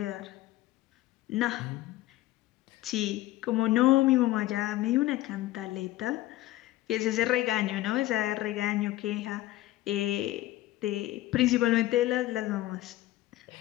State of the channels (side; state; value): right; quieter; 16.2 dB